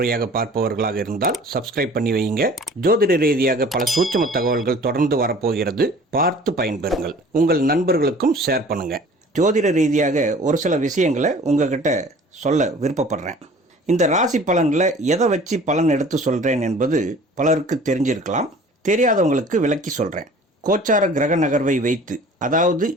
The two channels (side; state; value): both; normal; correlation 0.47